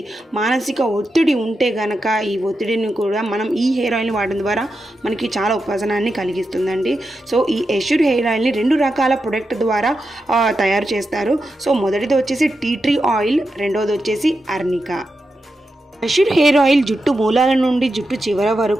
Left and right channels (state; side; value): normal; both; correlation 0.88